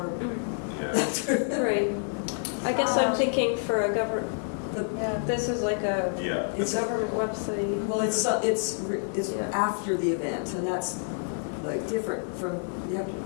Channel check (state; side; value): silent; right; digital silence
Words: Yeah. Right. I guess I'm thinking for a government, But Yeah. this is like a Yeah. it's, government website. well, it's after the event, and that's like different from, you have to,